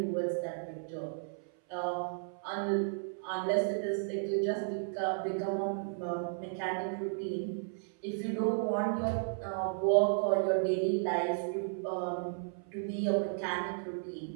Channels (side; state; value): left; silent; 55 dB below the other